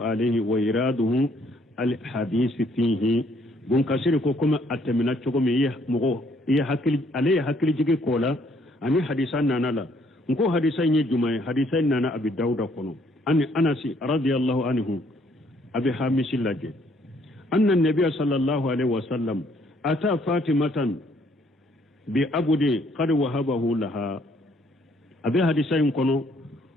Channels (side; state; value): both; normal; correlation 0.66